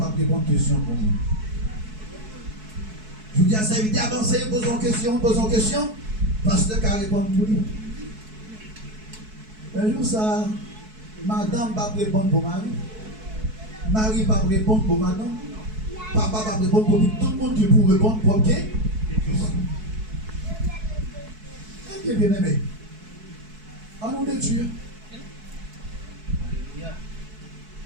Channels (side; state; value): left; late; 4.6 ms